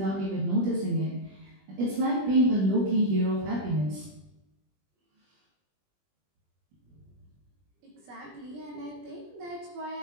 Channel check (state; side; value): late; left; 20 ms